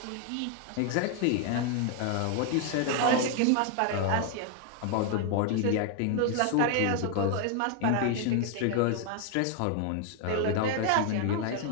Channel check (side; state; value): both; different; correlation 0.01